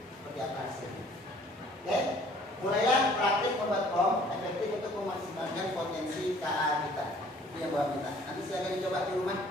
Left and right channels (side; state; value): both; normal; correlation 0.56